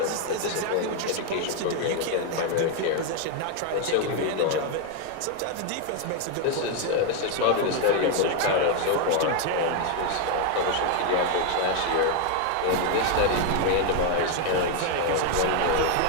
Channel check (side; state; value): both; different; correlation 0.01